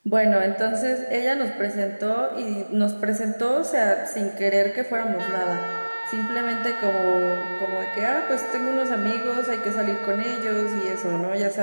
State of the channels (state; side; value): inverted; both; correlation -1.00